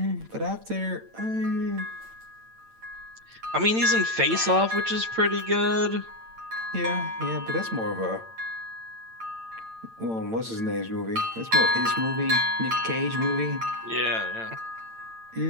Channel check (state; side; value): late; left; 8.9 ms